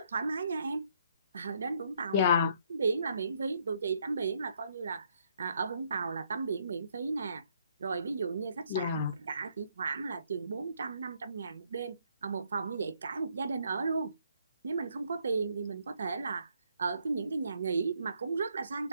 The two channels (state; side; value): inverted; both; correlation -0.71